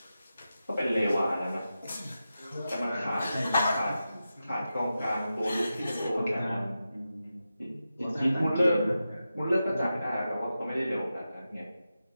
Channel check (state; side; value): inverted; both; correlation -0.91